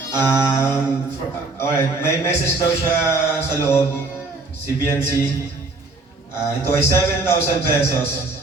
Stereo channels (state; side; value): quieter; left; 3.4 dB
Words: Alright, may message daw siya sa loob. Si Bianci. Ito ay 7,000 pesos.